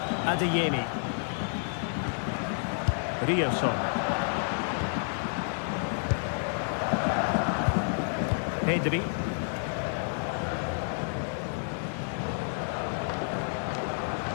Adeyemi. Rioson. Pedri.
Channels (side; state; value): right; silent; 58 dB below the other